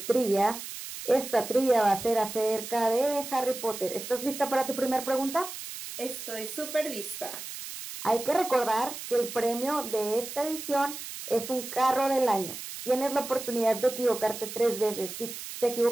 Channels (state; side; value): noise; right; hiss, 10 dB below the sound